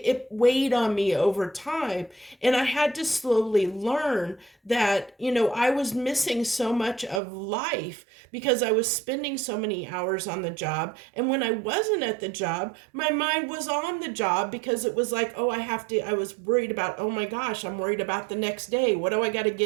weighed on me over time, and I had to slowly learn that I was missing so much of life because I was spending so many hours on the job. And when I wasn't at the job, my mind was on the job because it was like, oh, I was worried about, oh my gosh, I'm worried about the next day. What do I got to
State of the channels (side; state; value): left; drops out; at 7.2 s